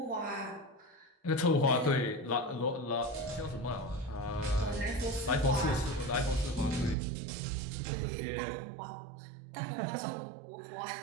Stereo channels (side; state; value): left; drops out; at 7.0 s